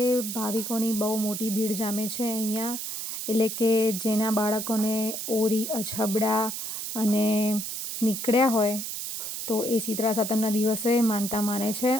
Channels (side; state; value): right; noise; hiss, 5 dB below the sound